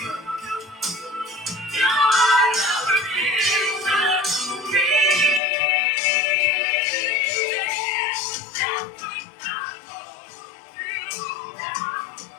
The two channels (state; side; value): drops out; right; at 5.4 s